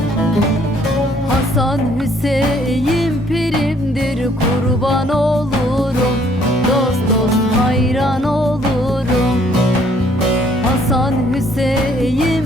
Hasan Hüseyin pirimdir, kurban olurum, dost dost hayran olurum. Hasan Hüseyin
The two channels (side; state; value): both; normal; correlation 0.63